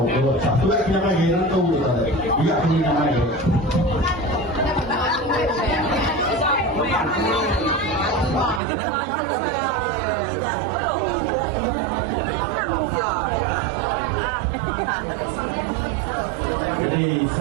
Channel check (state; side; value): drops out; left; at 8.6 s